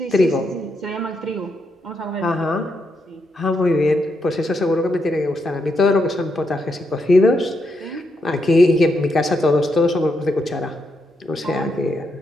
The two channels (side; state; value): both; normal; correlation 0.81